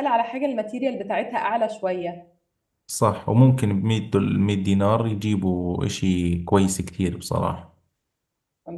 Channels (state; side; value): identical; both; correlation 1.00